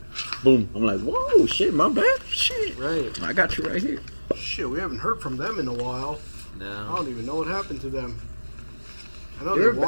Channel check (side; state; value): both; inverted; correlation -1.00